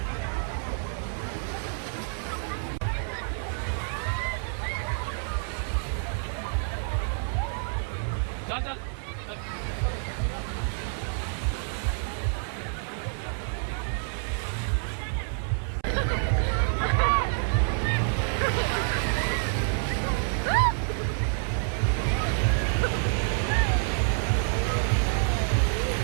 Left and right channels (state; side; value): silent; left; 56 dB below the other